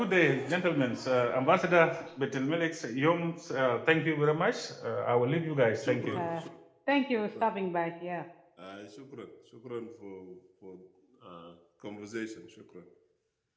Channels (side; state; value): both; identical; correlation 1.00